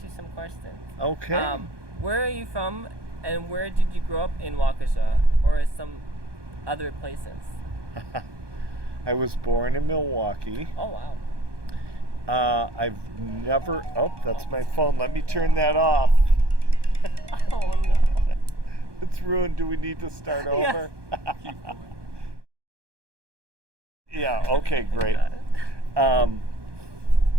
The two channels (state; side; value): late; left; 1.2 ms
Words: you some questions. Okay. Where are you from, and where did you grow up in Waukesha, or some other places? I was born in Milwaukee. Oh, wow. I've never... Oh, that's my phone. Let me turn that off. Oh, no. It's ruined. Do we need to start over? Keep going. Yeah, okay, great. Got it.